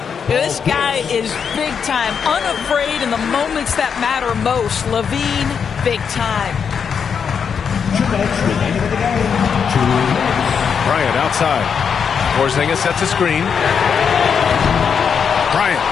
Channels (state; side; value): quieter; right; 6.8 dB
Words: This guy is big time, unafraid in the moments that matter most. Levine, big time. Bryant outside. Porzingis sets a screen. Bryant,